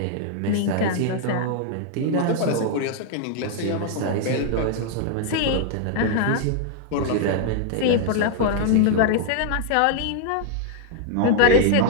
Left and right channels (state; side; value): different; both; correlation 0.00